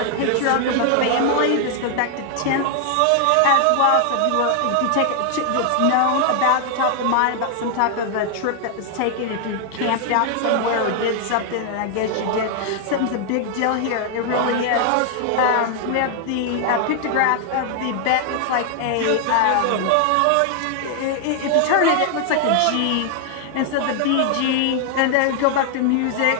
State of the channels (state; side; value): different; both; correlation 0.00